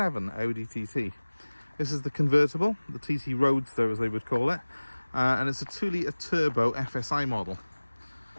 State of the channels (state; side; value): inverted; both; correlation -1.00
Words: Audi TT. This is the convertible, the TT Roaster as they would call it, and it's a 2-litre turbo FSI model.